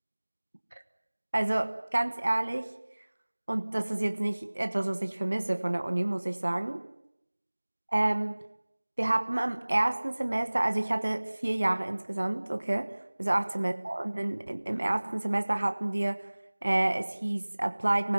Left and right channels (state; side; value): inverted; both; correlation -1.00